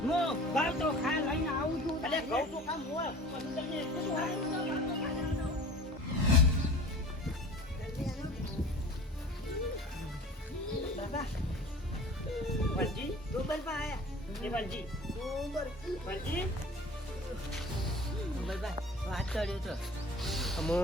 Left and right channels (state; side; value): normal; both; correlation 0.42